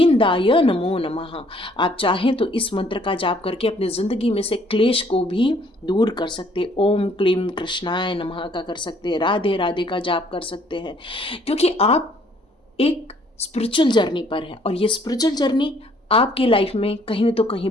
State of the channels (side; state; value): both; normal; correlation 0.62